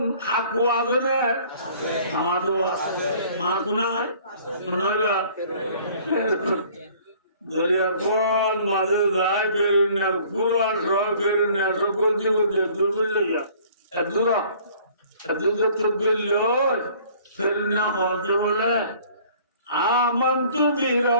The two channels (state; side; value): inverted; both; correlation -0.54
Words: হাকু আছে না আমাদের মা কোনায় নয়বা দরিয়া কোন মাঝে যায় ফেরুনিয়া পুরা সব ফেরুনিয়া সকল জীবন দূর লইয়া দূরা আমন্তু